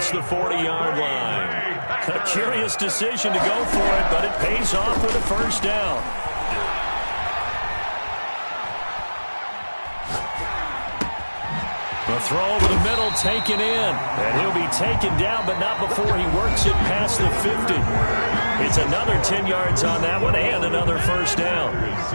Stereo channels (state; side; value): inverted; both; correlation -1.00